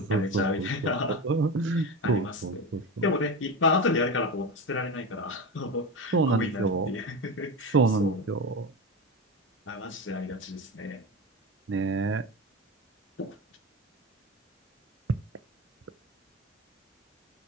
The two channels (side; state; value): both; normal; correlation 0.22